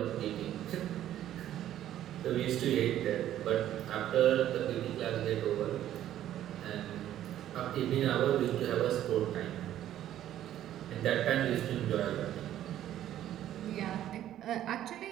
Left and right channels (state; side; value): quieter; left; 12.1 dB